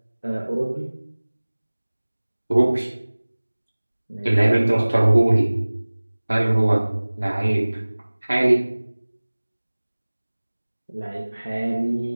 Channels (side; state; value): both; inverted; correlation -1.00